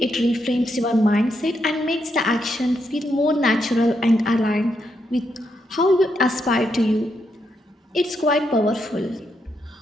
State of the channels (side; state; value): both; normal; correlation 0.81